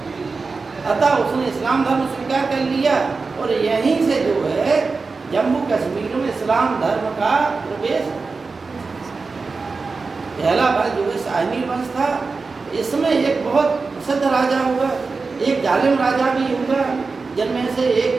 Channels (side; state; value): left; quieter; 4.3 dB